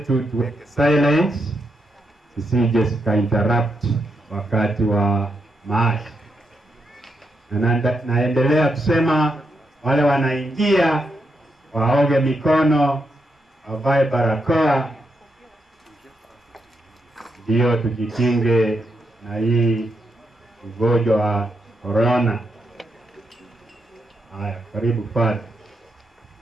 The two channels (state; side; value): normal; both; correlation 0.82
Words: tuweke silence zisije zika interrupt wakati wa maasi. Na naendelea kusema wale wanaingia waoge mikono, wavae barakoa, ndio tujikinge na hii ugonjwa wa corona. Haya, karibu Father.